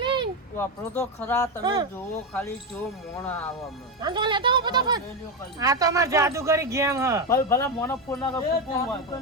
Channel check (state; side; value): normal; both; correlation 0.11